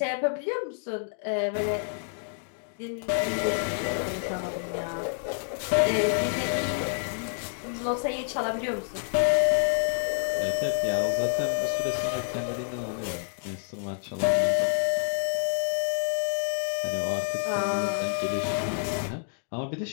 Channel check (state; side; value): silent; right; digital silence